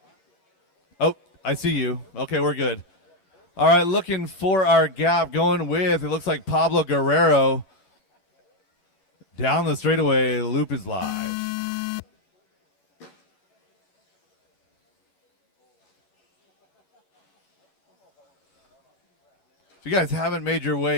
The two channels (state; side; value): late; right; 11 ms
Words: Oh, I see you. Okay, we're good. All right, looking for our gap. Going with, it looks like Pablo Guerrero. Down the straightaway, loop is live. If you guys haven't made your